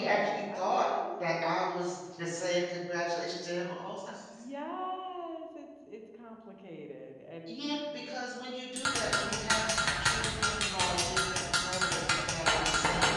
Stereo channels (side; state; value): both; identical; correlation 1.00